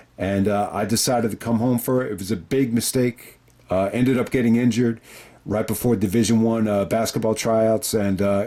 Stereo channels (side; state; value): both; identical; correlation 1.00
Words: and I decided to come home for it. It was a big mistake. Ended up getting injured right before Division I basketball tryouts, and